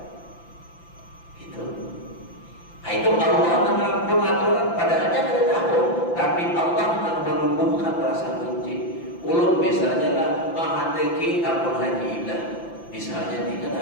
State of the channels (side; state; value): right; late; 5.9 ms